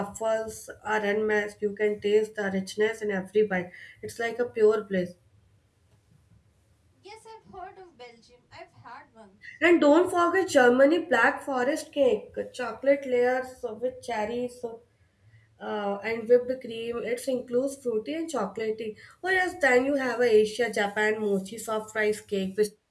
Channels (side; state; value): both; identical; correlation 1.00